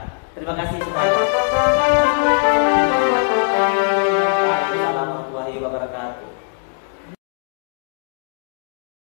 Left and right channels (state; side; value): silent; right; 66 dB below the other